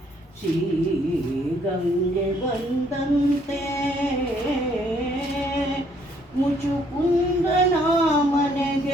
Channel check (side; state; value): both; normal; correlation 0.66